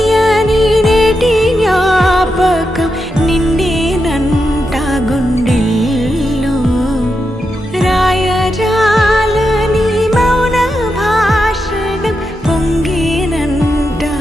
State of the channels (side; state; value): both; normal; correlation 0.86